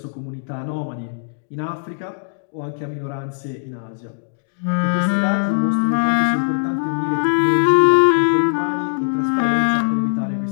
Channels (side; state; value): right; silent; digital silence